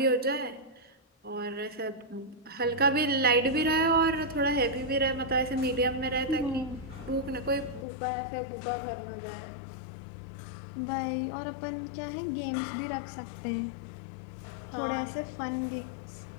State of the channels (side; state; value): right; drops out; at 7.9 s